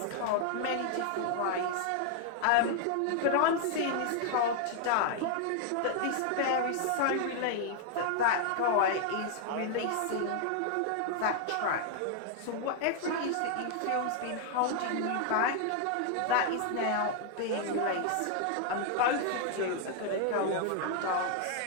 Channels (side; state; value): both; different; correlation 0.00